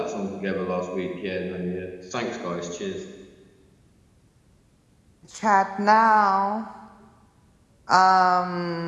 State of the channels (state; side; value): identical; both; correlation 1.00